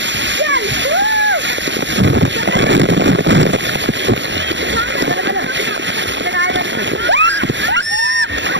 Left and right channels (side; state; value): left; late; 0.53 ms